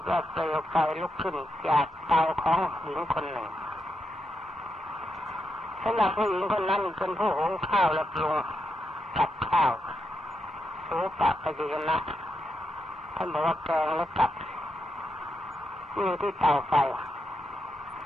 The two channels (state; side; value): normal; both; correlation 0.84